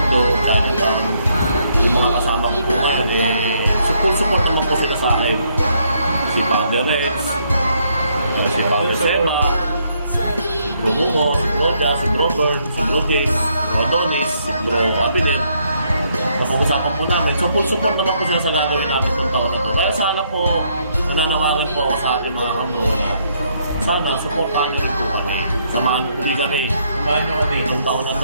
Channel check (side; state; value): both; inverted; correlation -0.72